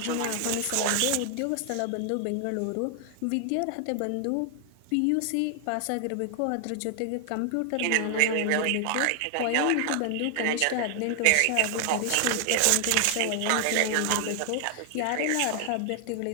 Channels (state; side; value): different; both; correlation 0.00